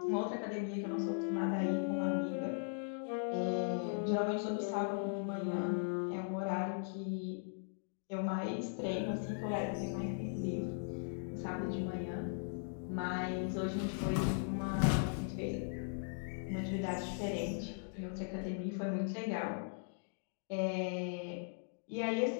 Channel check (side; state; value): right; silent; digital silence